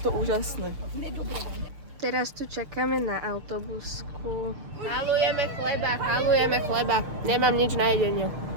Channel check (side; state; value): left; late; 6.7 ms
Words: úžasné. Teraz tu čakáme na autobusku. Halujeme chleba. Nemám nič na jedenie.